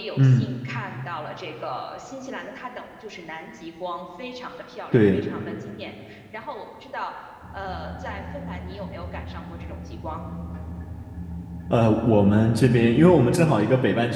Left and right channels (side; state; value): both; identical; correlation 1.00